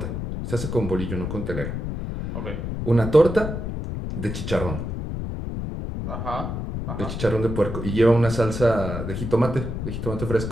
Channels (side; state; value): left; noise; rumble, 5 dB below the sound